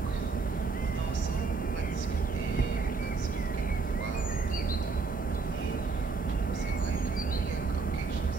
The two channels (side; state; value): left; quieter; 4.4 dB